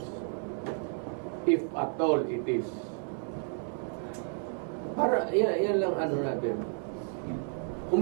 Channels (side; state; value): left; silent; 57 dB below the other